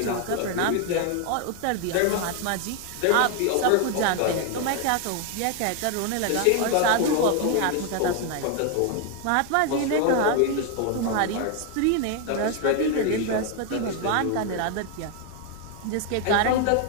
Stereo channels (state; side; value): different; both; correlation 0.01